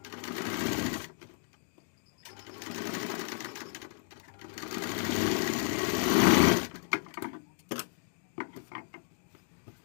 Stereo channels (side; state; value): right; silent; 56 dB below the other